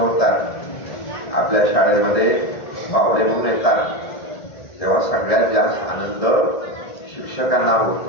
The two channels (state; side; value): late; right; 1.7 ms